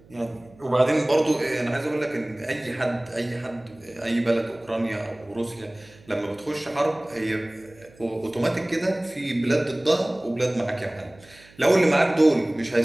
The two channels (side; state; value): right; noise; hum, 26 dB below the sound